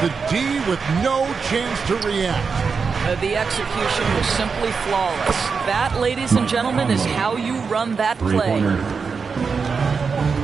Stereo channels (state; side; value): quieter; left; 5.3 dB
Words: The D with no chance to react. The execution was simply flawless. That, ladies and gentlemen, is how you run that play.